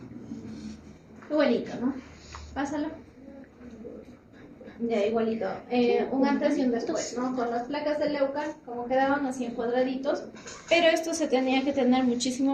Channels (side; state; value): both; identical; correlation 1.00